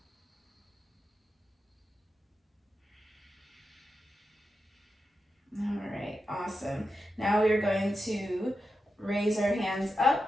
All right, awesome. Now we're going to raise our hands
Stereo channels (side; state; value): both; normal; correlation 0.88